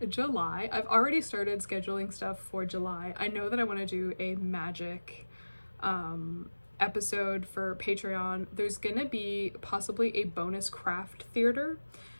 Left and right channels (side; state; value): both; inverted; correlation -1.00